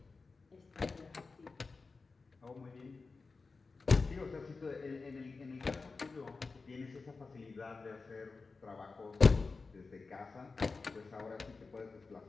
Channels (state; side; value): quieter; right; 4.2 dB